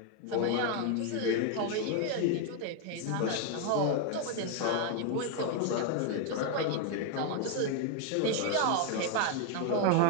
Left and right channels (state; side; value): different; both; correlation 0.01